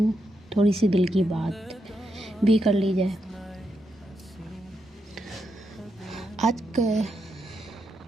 थोड़ी सी दिल की बात भी कर ली जाए। आज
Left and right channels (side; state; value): both; normal; correlation 0.83